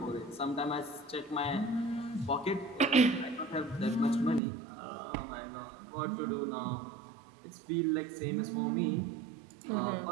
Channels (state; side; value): drops out; left; at 4.4 s